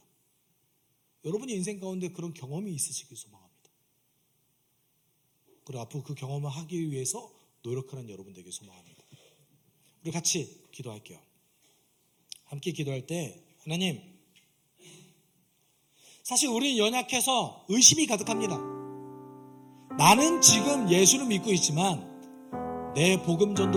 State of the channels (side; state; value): both; identical; correlation 1.00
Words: 여러분이 인생 가운데 그런 경험이 있으시길 소망합니다. 그리고 앞으로 그 경험을 하기 위해서 노력하는 여러분 되길 소망합니다. 우리 같이 기도할게요. 함께 기도할 때 하나님, 사실 우리는 연약해서 의심이 가득합니다. 나는 지금 예수를 믿고 있지만 내 복음